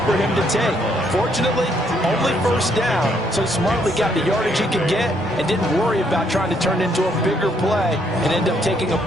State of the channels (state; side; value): normal; both; correlation 0.70